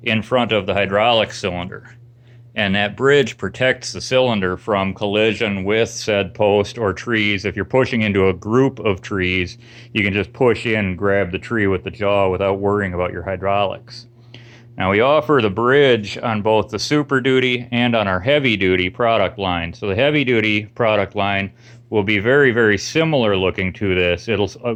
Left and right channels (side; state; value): both; identical; correlation 1.00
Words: in front of the hydraulic cylinder. And that bridge protects the cylinder from collision with said post or trees. If you're pushing into a group of trees, you can just push in and grab the tree with the jaw without worrying about your hydraulics. Now, we offer the bridge on both the Super Duty and on our Heavy Duty product line. So the Heavy Duty product line will be very, very similar looking to this. It'll,